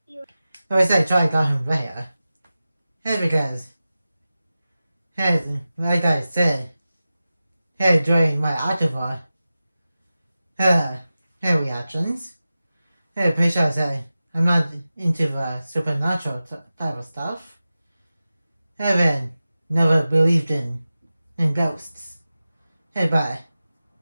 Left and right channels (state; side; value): inverted; both; correlation -0.94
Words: I would say Charlie got him there. Because, like I said, during my October reactions, pretty sure I said I'm not into the supernatural type of stuff. Haven't never believed in ghosts. But